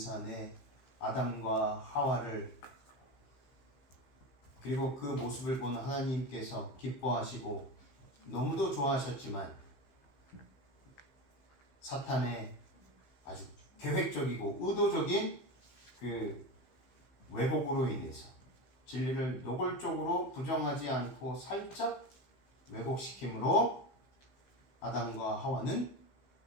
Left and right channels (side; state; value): right; late; 15 ms